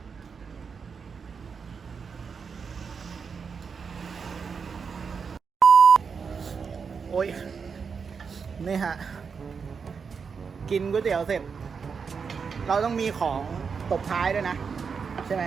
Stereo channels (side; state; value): left; quieter; 5.8 dB